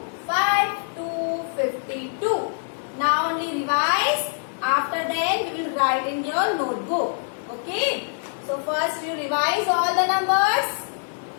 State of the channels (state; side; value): silent; right; digital silence